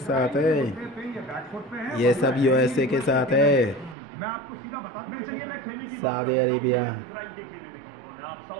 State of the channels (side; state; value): left; drops out; at 4.0 s